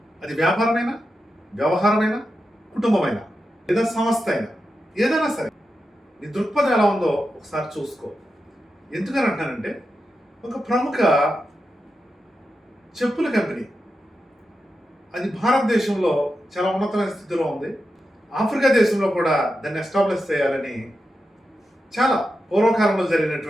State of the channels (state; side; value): normal; both; correlation 0.89